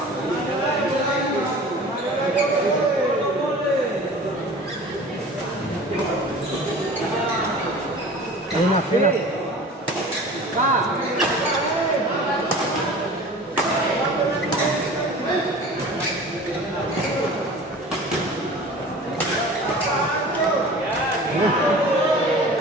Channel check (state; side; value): normal; both; correlation 0.40